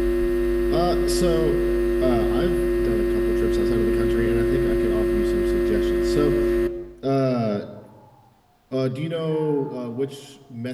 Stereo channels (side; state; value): both; identical; correlation 1.00